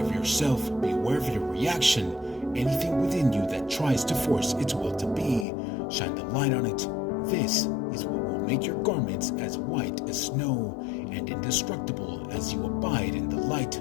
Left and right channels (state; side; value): drops out; right; at 5.5 s